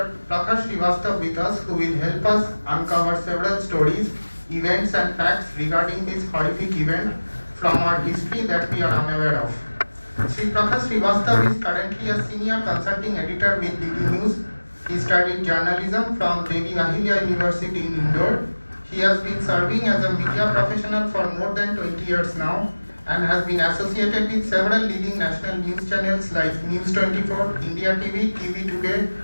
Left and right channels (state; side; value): inverted; both; correlation -1.00